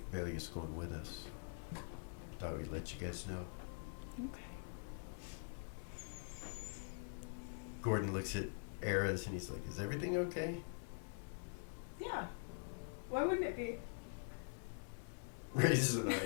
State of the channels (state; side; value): silent; right; digital silence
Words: Valia's going with us. Thought we'd let you guys know. Okay. Gordon looks at Eris, and he's like, is everything okay? Yeah. Why wouldn't it be? Raises an